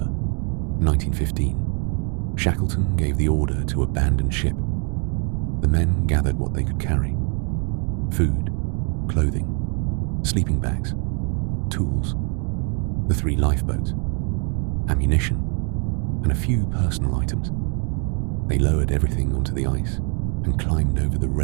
1915, Shackleton gave the order to abandon ship. The men gathered what they could carry: food, clothing, sleeping bags, tools, the 3 lifeboats, ammunition, and a few personal items. They lowered everything onto the ice and climbed over the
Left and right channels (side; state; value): left; quieter; 38.2 dB